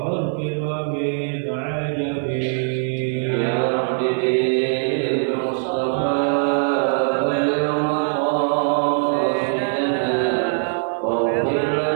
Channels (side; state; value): left; silent; 55 dB below the other